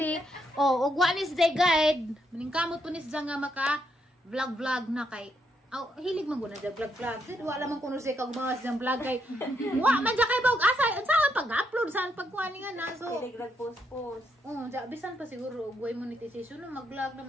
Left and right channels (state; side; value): normal; both; correlation 0.78